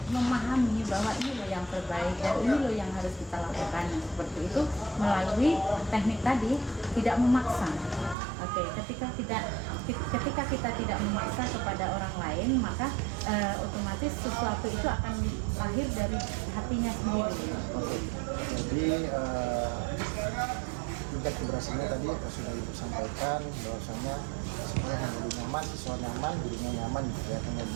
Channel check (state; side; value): drops out; left; at 8.2 s